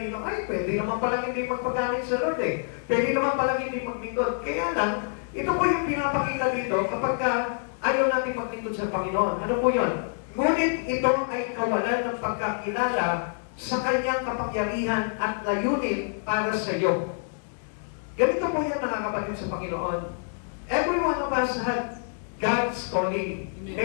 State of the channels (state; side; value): silent; right; digital silence